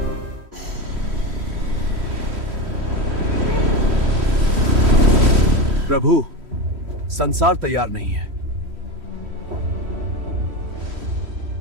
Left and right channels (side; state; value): left; late; 3.1 ms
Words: प्रभु, संसार तैयार नहीं है।